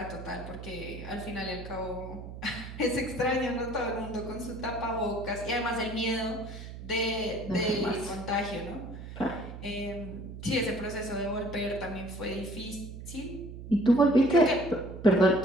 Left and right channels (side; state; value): right; noise; hum, 11 dB below the sound